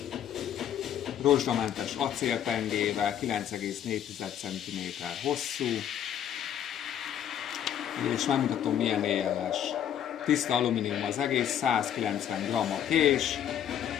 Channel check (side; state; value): right; quieter; 9.9 dB